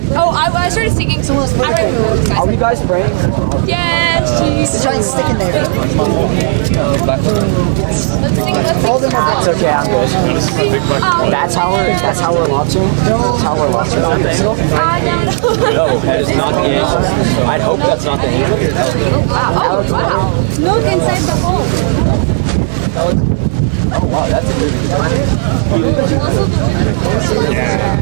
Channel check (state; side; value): silent; left; digital silence